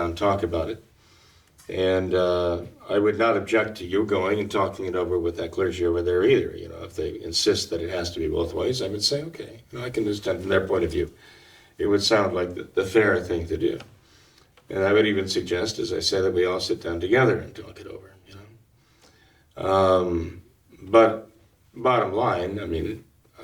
and talk about it. And I would not object to you going and talking it over with that clergy over there either. If they insist that it has to be both ways, I would say, okay, I can understand from their point of view. It would sound like the fair thing to do. And I would even suggest, as I said, that we all sit down together and talk it over. But bottom line,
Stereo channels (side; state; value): both; identical; correlation 1.00